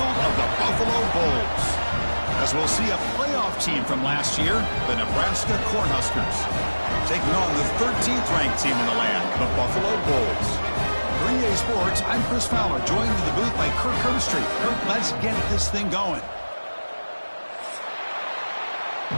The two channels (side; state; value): both; inverted; correlation -1.00